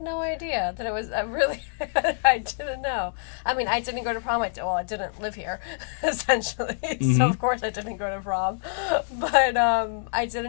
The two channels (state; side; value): silent; right; digital silence